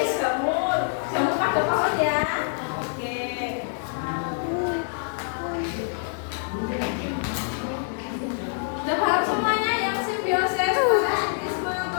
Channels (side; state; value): right; silent; digital silence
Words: jamur. Jamur pada pohon ya. Oke. Udah paham semuanya yang simbiosis, parasitisme,